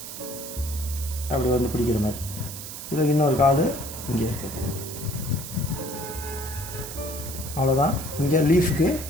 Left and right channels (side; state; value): right; noise; hiss, 10 dB below the sound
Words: அப்படி வந்து பிடிக்கிற மாதிரி, இதில் இன்னொரு கால் இங்கே இருக்குது. அவ்வளோதான். இங்கே லீஃப்க்கு,